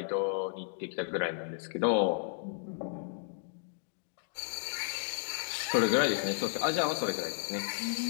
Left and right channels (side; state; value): right; silent; digital silence